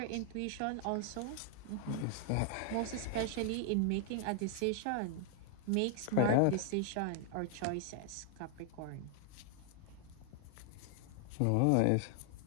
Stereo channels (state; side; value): different; both; correlation 0.00